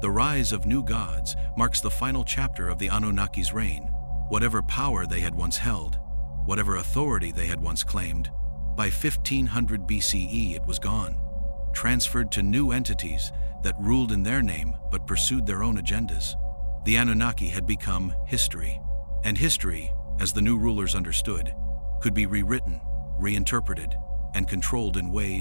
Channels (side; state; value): both; inverted; correlation -1.00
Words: The rise of new gods marks the final chapter of the Anunnaki's reign. Whatever power they had once held, whatever authority they had once claimed, by 1500 BCE it was gone, transferred to new entities that ruled in their name but pursued their own agendas. The Anunnaki had become history, and history, as the new rulers understood, could be rewritten, reinterpreted, and controlled in